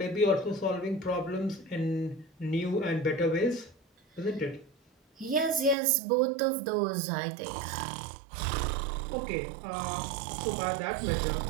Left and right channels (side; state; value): left; drops out; at 5.8 s